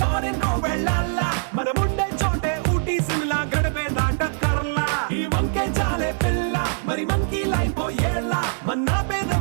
కో వెళ్ళాలా మనం ఉండే చోటే ఊటీ సిమ్లా గడిపే దాటక్కర్లా ఈ వంకే చాలే పిల్ల మరి మనకి లైఫ్ ఏళ్ళ మన్నా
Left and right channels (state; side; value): silent; left; digital silence